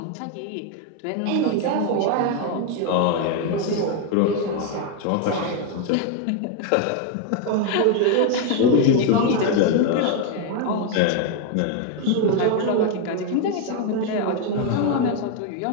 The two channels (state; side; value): different; both; correlation 0.01